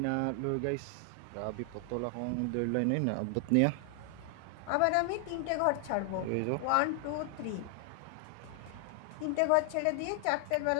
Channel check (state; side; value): different; both; correlation 0.00